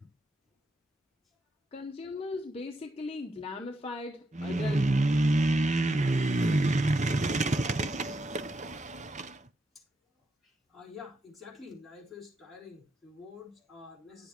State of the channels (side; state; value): both; normal; correlation 0.82